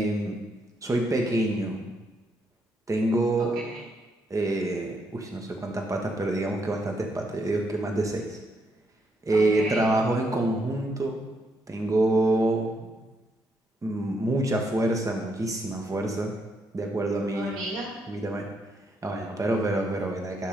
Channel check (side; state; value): both; normal; correlation 0.77